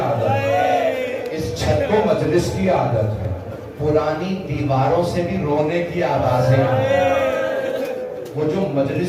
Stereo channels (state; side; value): identical; both; correlation 1.00